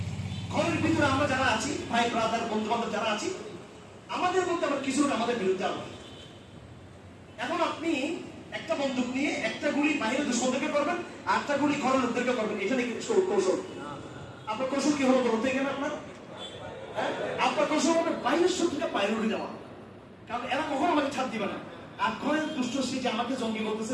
ঘরের ভিতরে আমরা যারা আছি, ভাই ব্রাদার বন্ধু বান্ধব যারা আছি, আমাদের মধ্যে আবার কিছু আমাদের বিরুদ্ধে আবার। এখন আপনি একটা বন্দুক নিয়ে একটা গুলি বাইরে দুশোদেরকে করবেন, আর একটা গুলি ঘরের লোকদেরকে করবেন, এটা নাকি কৌশল? আপনার কৌশল কি হলো বলতে গেলে আপনার আপনার কৌশল হবে বাইরের শত্রুটা প্রায়োরিটি দেওয়া, কারণ এরা কখনো আমাকে ছাড় দিবে না। আর ঘরের দুষ্ট সে যে আমাকে জঙ্গি করতেছে,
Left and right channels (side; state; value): both; identical; correlation 1.00